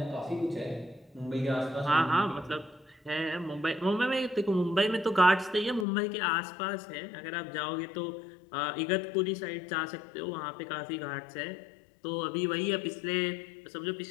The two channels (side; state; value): right; drops out; at 5.9 s